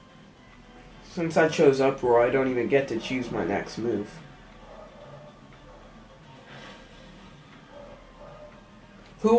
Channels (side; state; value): both; identical; correlation 1.00